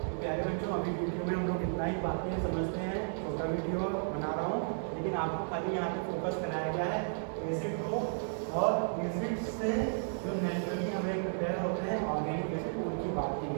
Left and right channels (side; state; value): left; silent; digital silence